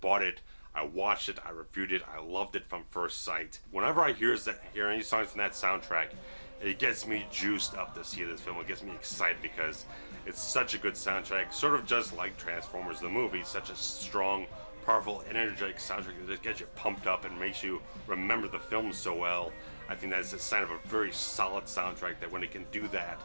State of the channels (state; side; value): inverted; both; correlation -1.00